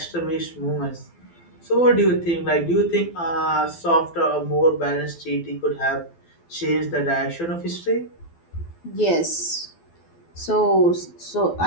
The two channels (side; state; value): right; late; 12 ms